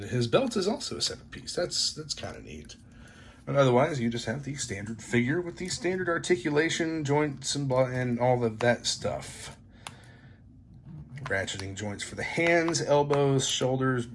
his belt is also a separate piece. That's kind of neat. But otherwise, you just have the standard figure with the standard articulation, joints, and all of that stuff. Ratcheting joints for the hands, elbows, shoulders,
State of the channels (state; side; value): identical; both; correlation 1.00